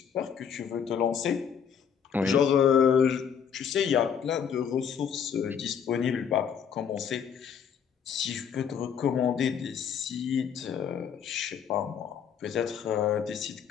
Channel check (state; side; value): quieter; right; 7.6 dB